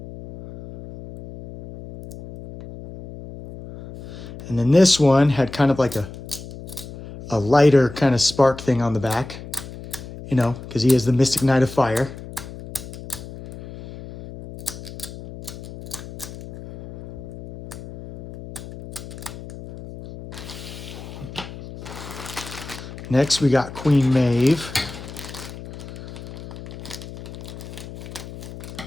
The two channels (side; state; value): left; noise; hum, 13 dB below the sound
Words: And then this one had kind of like a lighter kind of spark thing on the back, you know, because he is the Mystic Knight of Fire. Next, we got Queen Maeve.